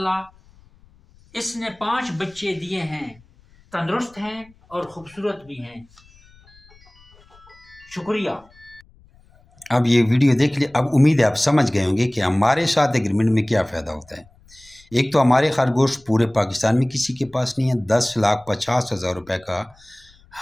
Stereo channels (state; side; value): noise; left; rumble, 28 dB below the sound